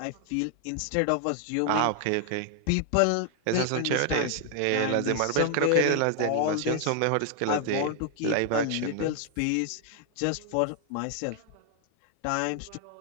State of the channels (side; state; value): both; different; correlation 0.00